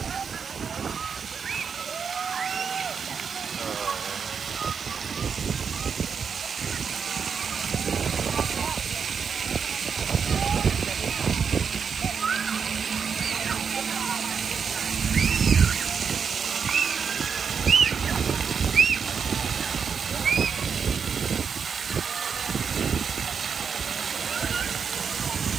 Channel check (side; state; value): left; quieter; 6.4 dB